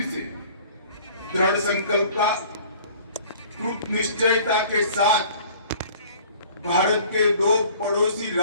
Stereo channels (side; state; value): both; inverted; correlation -0.50